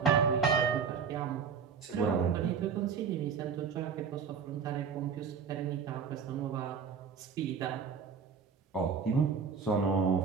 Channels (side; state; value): left; quieter; 6.2 dB